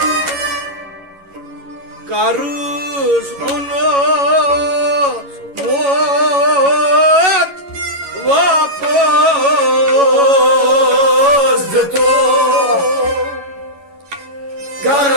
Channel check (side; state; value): left; late; 11 ms